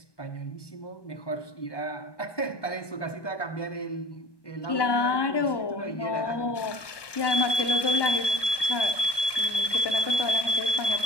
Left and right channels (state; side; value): late; right; 1.2 ms